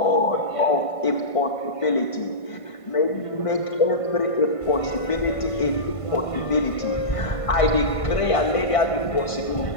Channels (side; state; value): right; late; 1.5 ms